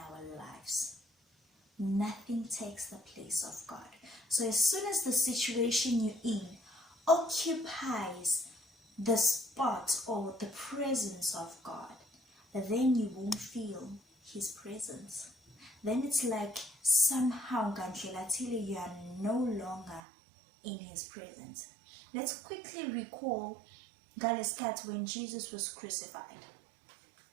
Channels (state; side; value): drops out; left; at 20.0 s